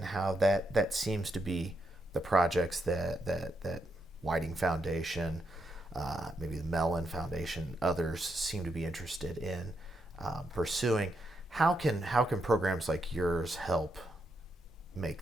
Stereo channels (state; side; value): normal; both; correlation 0.81